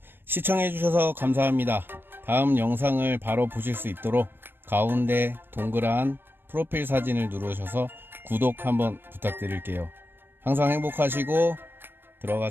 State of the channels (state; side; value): late; left; 0.098 ms